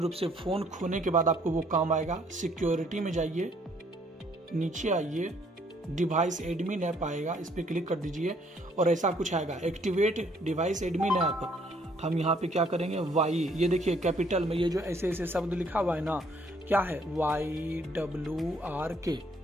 से फोन खोने के बाद आपको वो काम आएगा। सिक्योरिटी में जाइए, नीचे आइए, डिवाइस एडमिन ऐप आएगा, इस पर क्लिक कर दीजिए और ऐसा कुछ आएगा, एक्टिवेट डिवाइस एडमिन ऐप। हम यहाँ पे क्या करेंगे, वाई, ये देखिए कैपिटल में ये जो ऐसे ऐसे शब्द लिखा हुआ है ना, क्या है, YWRK,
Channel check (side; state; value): both; normal; correlation 0.65